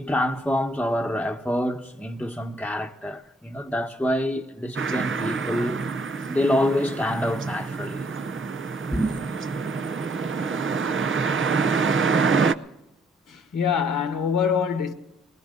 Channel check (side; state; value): both; normal; correlation 0.66